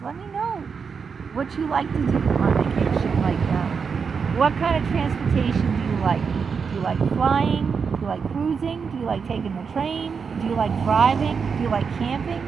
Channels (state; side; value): quieter; left; 5.8 dB